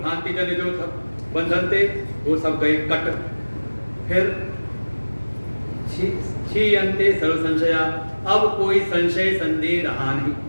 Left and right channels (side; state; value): both; inverted; correlation -1.00